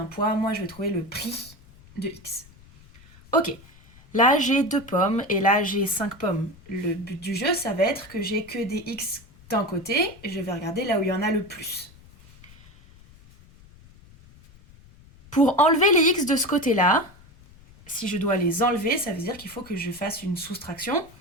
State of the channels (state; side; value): noise; left; rumble, 24 dB below the sound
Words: poids, moi je vais trouver le prix de x. Ok, là j'ai deux pommes, et là j'ai 5 pommes. Le but du jeu, ça va être que j'ai que des x d'un côté, et je vais regarder là où il y en a le plus. Pour enlever les x de ce côté-là, si je dois les enlever, ça veut dire qu'il faut que je fasse une soustraction.